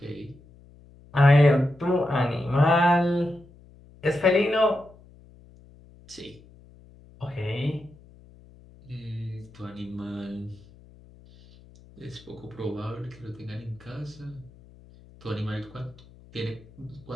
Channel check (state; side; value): noise; left; hum, 24 dB below the sound